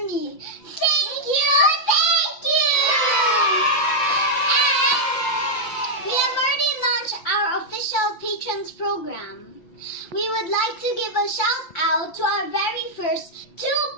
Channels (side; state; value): right; late; 5.9 ms